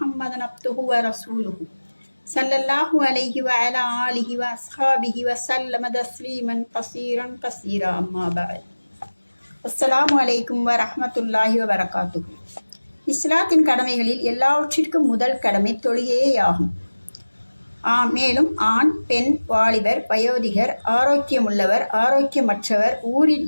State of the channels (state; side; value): inverted; both; correlation -1.00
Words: عبده ورسوله صلى الله عليه وعلى آله وأصحابه وسلم تسليما كثيرا أما بعد السلام عليكم ورحمة الله وبركاته. இஸ்லாத்தின் கடமைகளில் எல்லாவற்றிற்கும் முதல் கடமை தொழுகையேயாகும். மேலும் ஆண், பெண், வாலிபர், வயோதிகர், ஆரோக்கியமுள்ளவர், ஆரோக்கியமற்றவர், ஊரில்